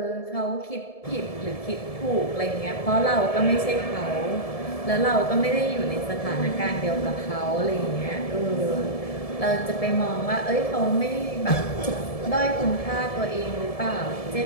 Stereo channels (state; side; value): late; right; 1.7 ms